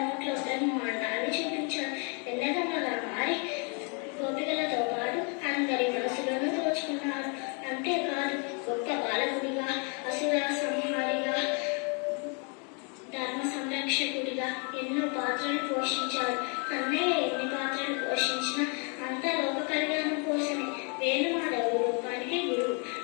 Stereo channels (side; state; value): right; quieter; 36.5 dB